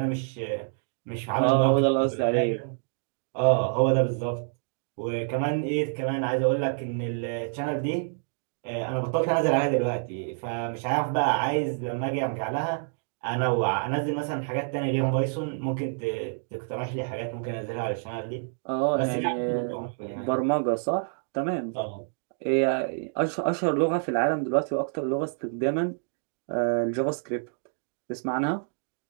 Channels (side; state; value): left; silent; digital silence